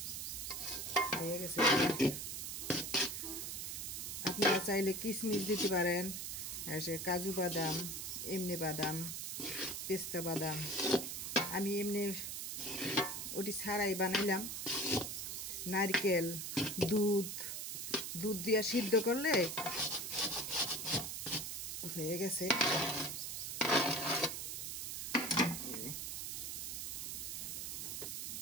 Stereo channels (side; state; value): right; noise; hiss, 4 dB below the sound